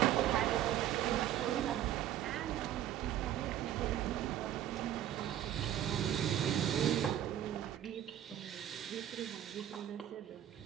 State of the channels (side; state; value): left; quieter; 11.5 dB